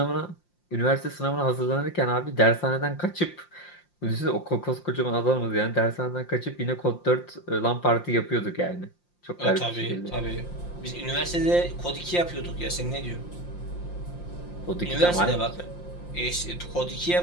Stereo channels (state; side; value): late; right; 5.7 ms